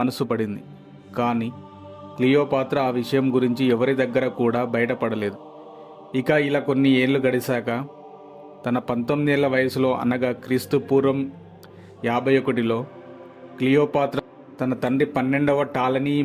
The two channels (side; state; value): both; identical; correlation 1.00